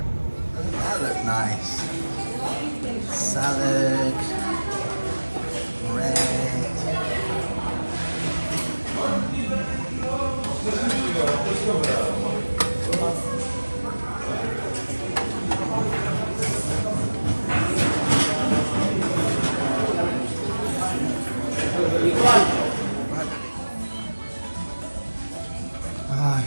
That looked nice. Salad, bread. Ah,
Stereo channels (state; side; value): inverted; both; correlation -1.00